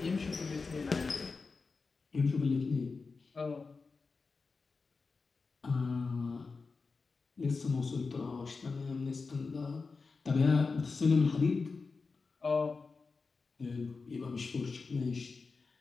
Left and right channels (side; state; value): right; quieter; 4.4 dB